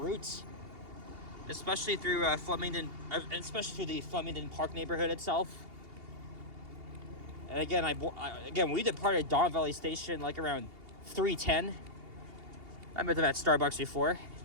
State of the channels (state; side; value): late; left; 2.8 ms